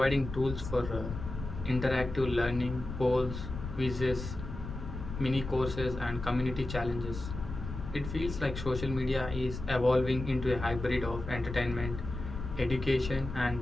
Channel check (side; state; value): left; noise; rumble, 8 dB below the sound